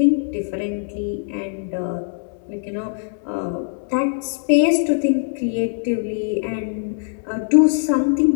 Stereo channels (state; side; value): silent; right; digital silence